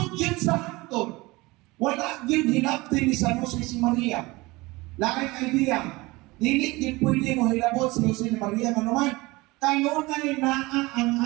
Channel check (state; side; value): quieter; left; 22.3 dB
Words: yun sa hangtod. Wala yun hinaptin ni San Jose si Maria. Laking idea. Dili din pwede mo hilabot si Jose ni Maria. Ano man? Kanunay na ang